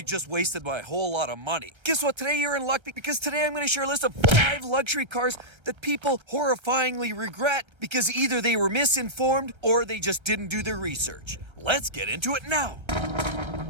just wasted my whole lot of money. Guess what? Today you're in luck because today I'm going to share a list of 5 luxury cars that people horrifyingly regret because either they were misinformed or they just didn't do their research. Let's get into it now.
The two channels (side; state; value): left; late; 1.1 ms